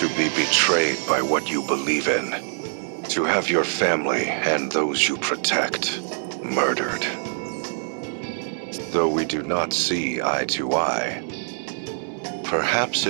be betrayed by what you believe in. To have your family and those you protect murdered. Though we do not see eye to eye, perhaps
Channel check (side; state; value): left; silent; digital silence